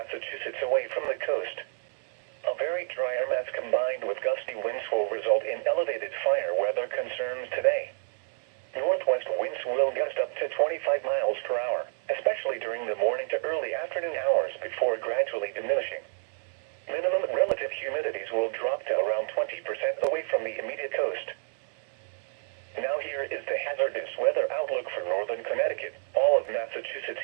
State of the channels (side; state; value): left; silent; 58 dB below the other